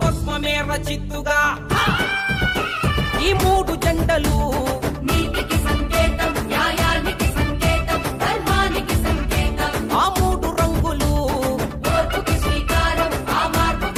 భస్మమే రచిత్తుగా ఈ మూడు జెండలు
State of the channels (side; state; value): both; identical; correlation 1.00